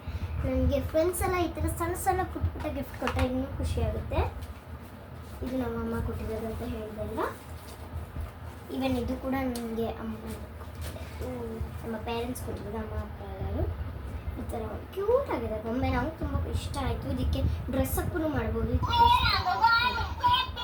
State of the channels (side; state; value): both; identical; correlation 1.00